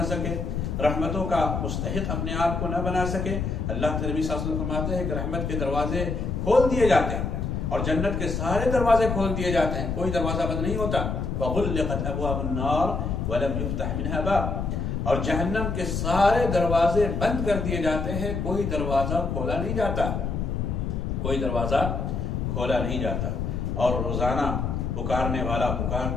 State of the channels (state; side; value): noise; left; rumble, 2 dB below the sound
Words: سکے، رحمتوں کا مستحق اپنے آپ کو نہ بنا سکے، اللہ کے نبی صلی اللہ علیہ وسلم فرماتے ہیں کہ رحمت کے دروازے کھول دیے جاتے ہیں اور جنت کے سارے دروازے کھول دیے جاتے ہیں، کوئی دروازہ بند نہیں ہوتا۔ وَغُلِّقَتْ أَبْوَابُ النَّارِ وَلَمْ يُفْتَحْ مِنْهَا بَابٌ، اور جہنم کے سارے دروازے بند کر دیے جاتے ہیں، کوئی دروازہ کھولا نہیں جاتا، کوئی دروازہ کھولا نہیں جاتا۔ اور روزانہ پکارنے والا